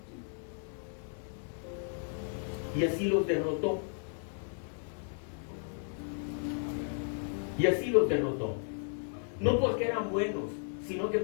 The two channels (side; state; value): right; silent; 55 dB below the other